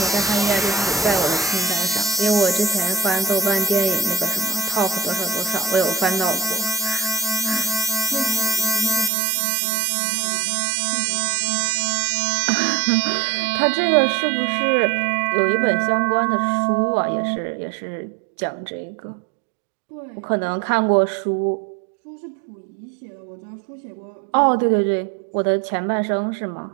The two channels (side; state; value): left; drops out; at 9.1 s